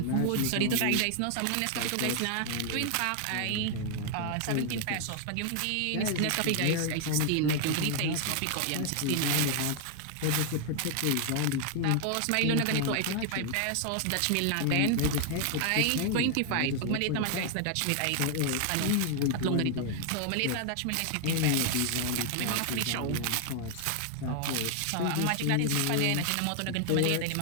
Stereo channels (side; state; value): both; different; correlation 0.00